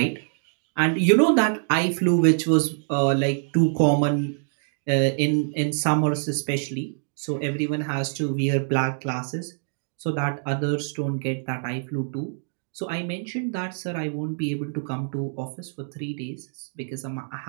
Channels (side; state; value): left; silent; digital silence